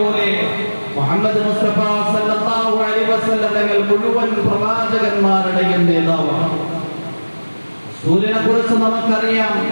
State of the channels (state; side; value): inverted; both; correlation -1.00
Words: മുഹമ്മദ് മുസ്തഫ സല്ലല്ലാഹു അലൈഹി വസല്ലം തങ്ങൾ മുഴുവൻ പ്രവാചകന്മാരുടെയും നേതാവാണ്. സൂര്യനെ കുറിച്ച് നമുക്കറിയാം,